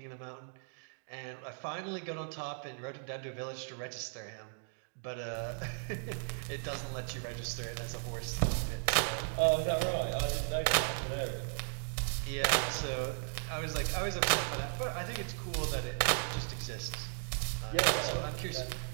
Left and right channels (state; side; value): silent; left; digital silence